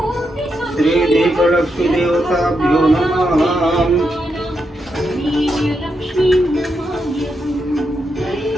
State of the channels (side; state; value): both; normal; correlation 0.83